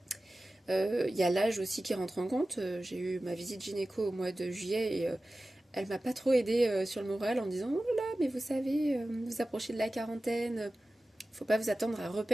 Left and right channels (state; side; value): normal; both; correlation 0.96